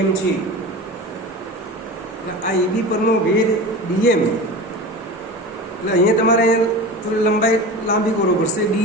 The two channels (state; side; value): normal; both; correlation 0.30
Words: છે. આ એબી પરનો વેધ ડીએમ એટલે અહીંયા તમારે થોડી લંબાઈ લાંબી કરવો પડશે.